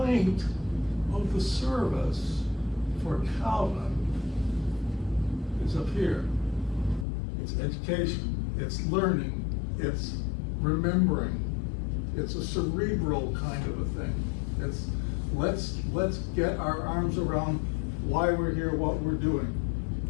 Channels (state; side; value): drops out; right; at 7.1 s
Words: of the service for Calvin is up here. It's education, it's learning, it's remembering. It's a cerebral kind of a thing. It's let's get our arms around why we're here, what we're doing.